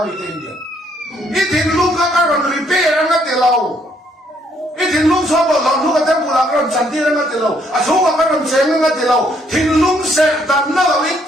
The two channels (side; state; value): both; normal; correlation 0.69